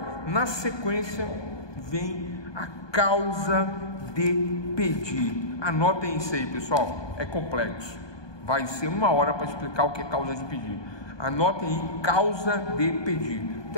na sequência, vem a causa de pedir. Anotem isso aí, pessoal, é complexo, vai ser 1 hora para explicar o que é causa de pedir. Anotem aí, causa de pedir.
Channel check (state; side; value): late; right; 1.2 ms